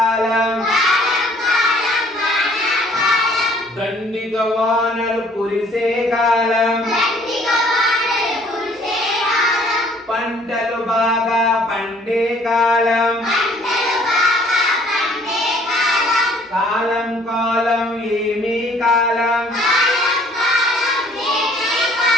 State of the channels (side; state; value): both; normal; correlation 0.58